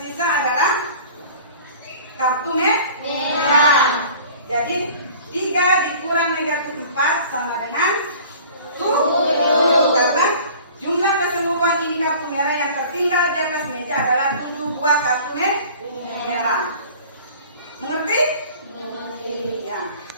adalah kartu merah. Jadi 3 dikurang negatif 4 sama dengan 7. Karena jumlah keseluruhan ini kartu merah yang tertinggal di atas meja adalah 7 buah kartu merah. Mengerti? Ya.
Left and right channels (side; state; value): both; inverted; correlation -0.45